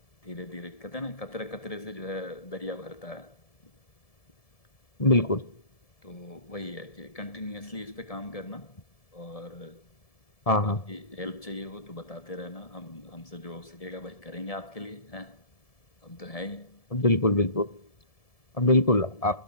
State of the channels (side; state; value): right; late; 1.7 ms